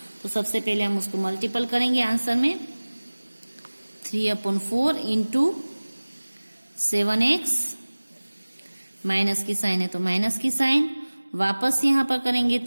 तो सबसे पहले हम उसको मल्टीपल करेंगे आंसर में। 3/4 इंटू 7x, माइनस की साइन है तो माइनस की साइन, वापस यहाँ पर करेंगे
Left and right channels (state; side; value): inverted; both; correlation -1.00